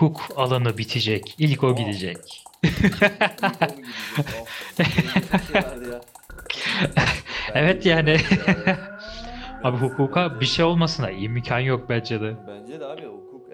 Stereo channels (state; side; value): identical; both; correlation 1.00